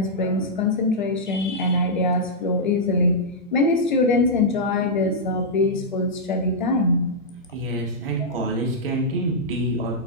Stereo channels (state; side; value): normal; both; correlation -0.08